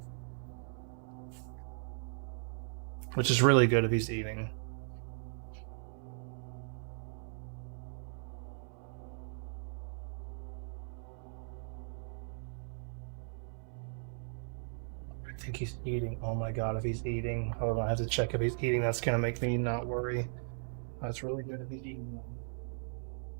Which is really good if he's eating. I think he's eating. Oh my god, if he's eating. Hold on, I have to check if he's eating. That's gonna make me not worry. That's really good if he's eating.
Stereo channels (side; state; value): left; silent; 53 dB below the other